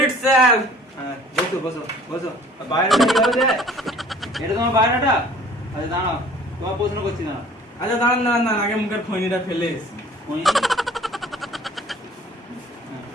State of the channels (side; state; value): both; normal; correlation 0.51